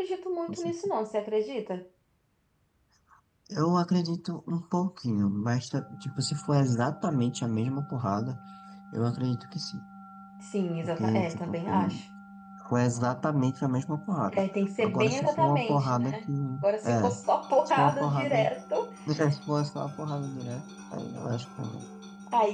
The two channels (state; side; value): identical; both; correlation 1.00